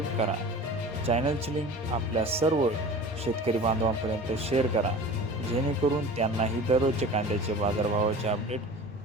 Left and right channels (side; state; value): both; normal; correlation 0.38